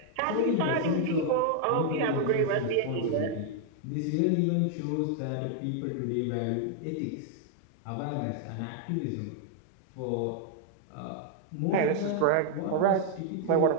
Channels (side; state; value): both; different; correlation 0.00